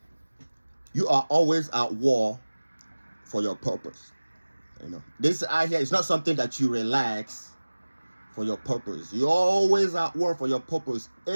You are always at war for your purpose. This out here is not something that you relax for your purpose. You're always at war for your purpose.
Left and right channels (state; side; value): inverted; both; correlation -1.00